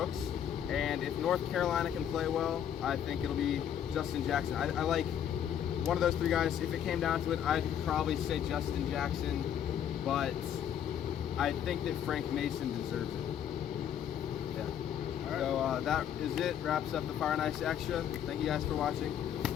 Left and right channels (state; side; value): quieter; right; 9.5 dB